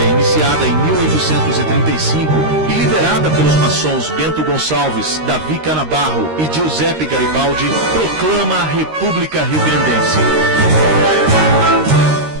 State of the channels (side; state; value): left; late; 13 ms